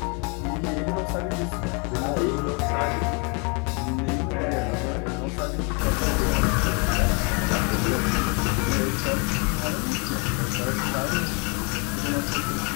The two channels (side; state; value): right; quieter; 33.5 dB